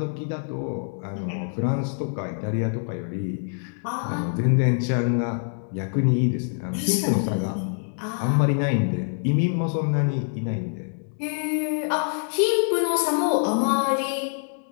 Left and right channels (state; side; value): silent; right; digital silence